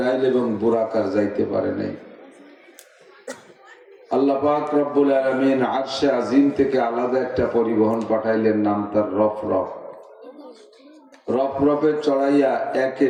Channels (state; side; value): identical; both; correlation 1.00